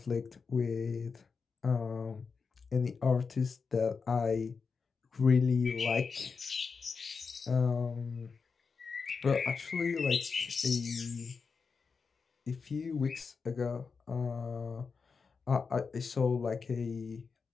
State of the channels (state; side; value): quieter; right; 5.2 dB